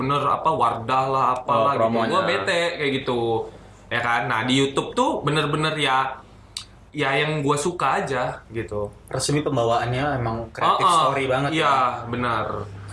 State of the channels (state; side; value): identical; both; correlation 1.00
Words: apa Wardah lah apalah gitu. promonya. Gua bete kayak gitu. Ya kan? Nah, di YouTube tuh bener-bener ya yang gua suka aja gitu. Resmi pembawaannya emang kreatif story banget. Iya, benar.